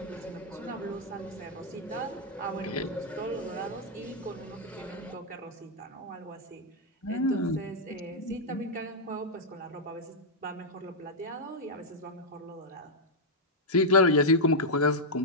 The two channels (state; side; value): normal; both; correlation -0.04